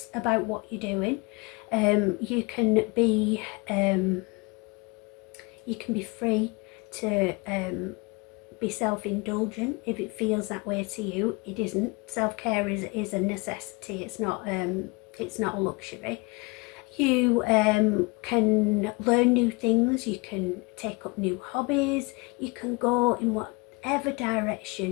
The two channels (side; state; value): right; quieter; 27.7 dB